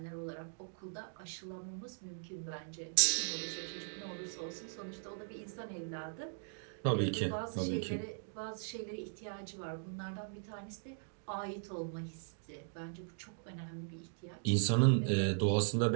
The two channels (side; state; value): left; silent; digital silence